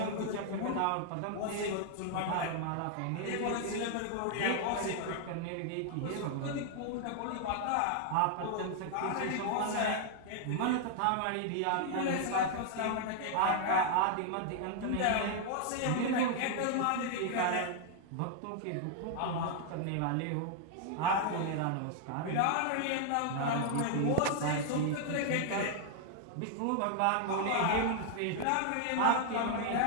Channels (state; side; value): different; both; correlation 0.00